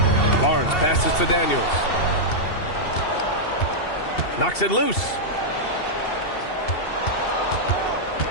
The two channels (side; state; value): right; late; 2.7 ms